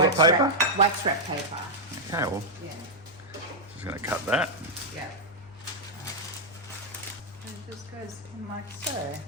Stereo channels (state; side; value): normal; both; correlation -0.03